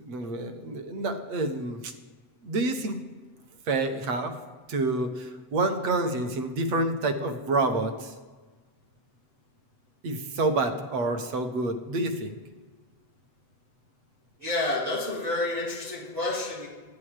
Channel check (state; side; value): late; left; 7.9 ms